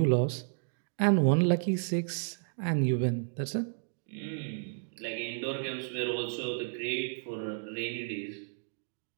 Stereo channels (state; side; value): silent; left; digital silence